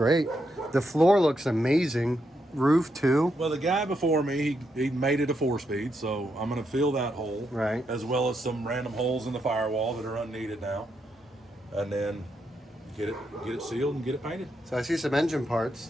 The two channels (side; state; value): both; normal; correlation 0.81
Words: The floor looks amazing. Roof too. Well, the guy before me, he made it a 4-speed, so I'm going to fill that hole, Right. as well as some random holes in the firewall that are unneeded now, and then get it sealed and get it painted. So I see some engine